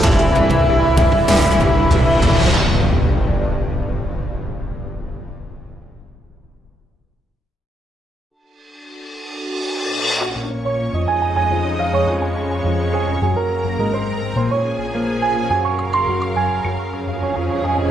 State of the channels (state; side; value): normal; both; correlation 0.81